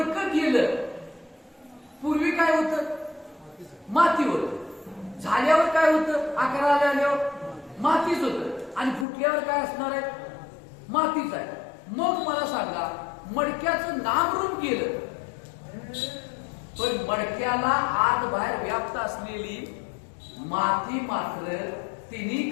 गेलं, पूर्वी काय होतं, माती होत, झाल्यावर काय होतं, आकाराला आल्यावर मातीच होत आणि फुटल्यावर काय असणार आहे, मातीच आहे. मग मला सांगा, मडक्याचं नामरूप गेलं पण मडक्याला आत बाहेर व्याप्त असलेली माती मात्र तिन्ही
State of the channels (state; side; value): drops out; right; at 9.1 s